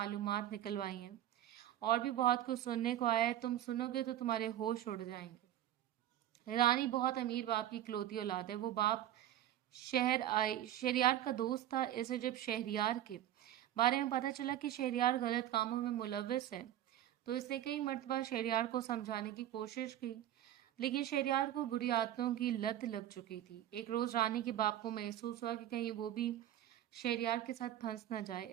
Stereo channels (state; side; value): quieter; left; 12.3 dB